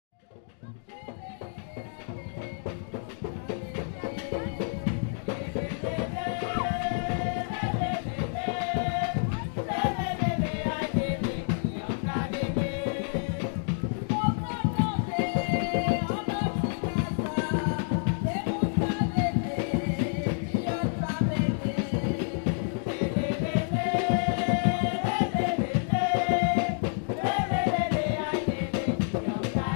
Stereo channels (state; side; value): silent; right; digital silence